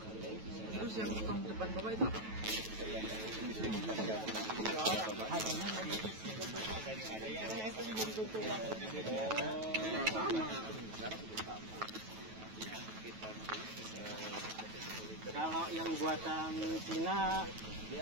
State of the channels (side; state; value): left; late; 9.2 ms